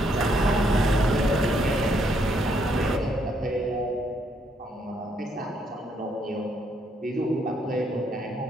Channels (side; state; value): both; normal; correlation 0.72